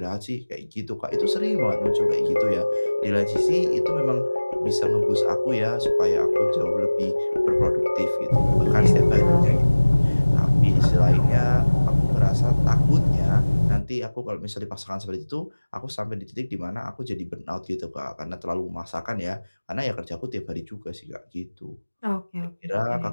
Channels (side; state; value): both; inverted; correlation -1.00